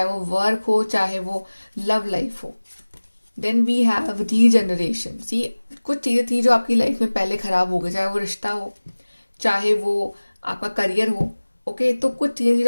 वो वर्क हो, चाहे वो लव लाइफ हो। Then we have regeneration. See, कुछ चीज़ें थी जो आपकी लाइफ में पहले खराब हो गई, चाहे वो रिश्ता हो, चाहे वो आपका करियर हो, ओके। तो कुछ चीज़ें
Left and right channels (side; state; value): both; inverted; correlation -1.00